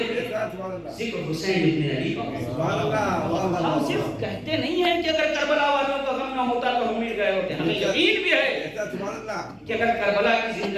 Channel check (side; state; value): both; identical; correlation 1.00